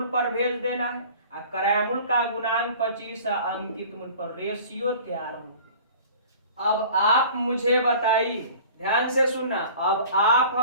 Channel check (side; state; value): both; inverted; correlation -0.45